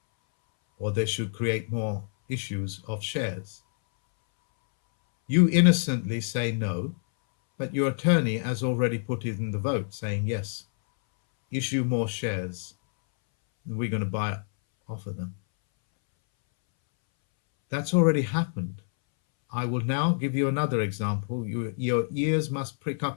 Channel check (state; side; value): silent; right; 60 dB below the other